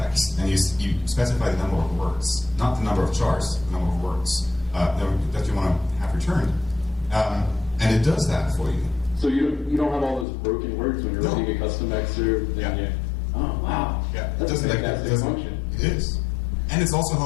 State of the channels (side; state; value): right; drops out; at 10.2 s